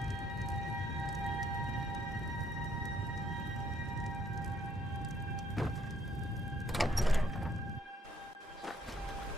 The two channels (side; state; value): both; normal; correlation 0.68